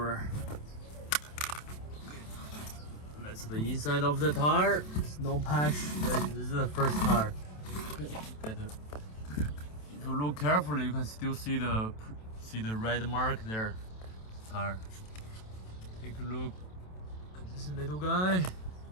That's the inside of the tire. There's no patch. This is the first tire. Okay. If you look carefully, you can still see the red mark there. Tire. Take a look at this little guy.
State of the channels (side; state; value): right; late; 27 ms